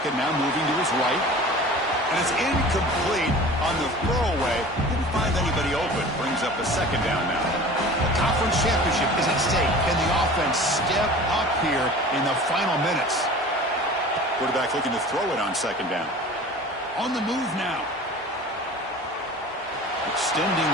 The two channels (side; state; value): both; normal; correlation 0.41